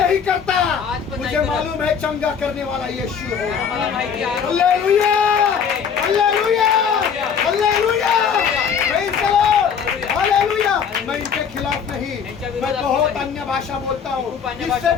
नहीं करता। आज पण मुझे नहीं करत. मालूम है चंगा करने वाला यीशु है। मला माहिती आहे hallelujah! Hallelujah! Hallelujah! Praise the Lord! Hallelujah! मैं इनके खिलाफ नहीं, मैं बहुत अन्य भाषा बोलता हूँ, इससे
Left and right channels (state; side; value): quieter; right; 7.0 dB